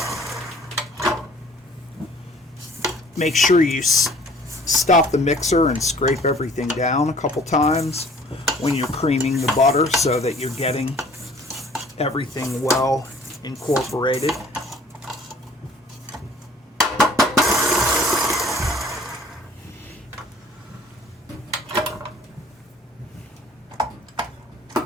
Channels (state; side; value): normal; both; correlation 0.53